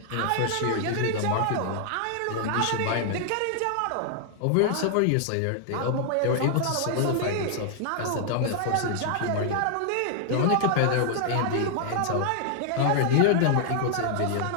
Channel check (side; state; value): both; different; correlation -0.01